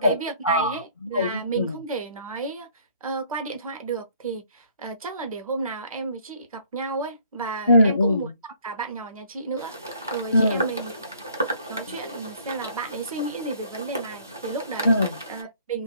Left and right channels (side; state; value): both; inverted; correlation -0.59